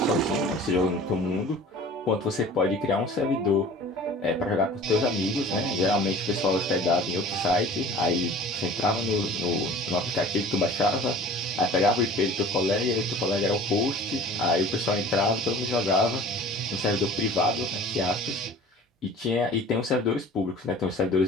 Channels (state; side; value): normal; both; correlation 0.44